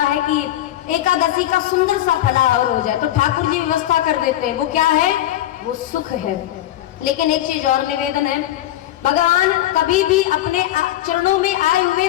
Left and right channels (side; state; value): right; quieter; 13.6 dB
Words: है कि एकादशी का सुंदर सा फलाहार हो जाए, तो ठाकुर जी व्यवस्था कर देते हैं। वो क्या है? वो सुख है। लेकिन एक चीज और निवेदन है, भगवान कभी भी अपने चरणों में आए हुए